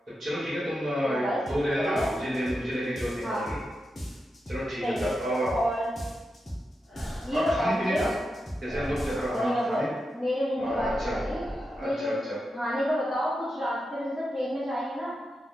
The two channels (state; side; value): normal; both; correlation 0.88